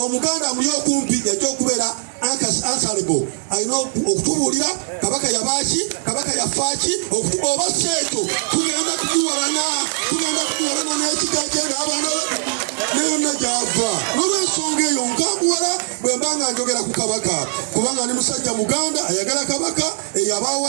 muli okumpi yajja okubeera answerable. Alina okutubuulira Kabaka yabaaki, Kabaka yafaaki oba seeto tugenda kugiwalana n'ekika kye n'abaana ne yonna gy'ava. N'olw'ensonga eyo nkambuwala bwe mba nga njogera ku Kabaka kubanga ni musajja Muganda ayagala Kabaka eyabaawo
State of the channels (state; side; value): silent; left; digital silence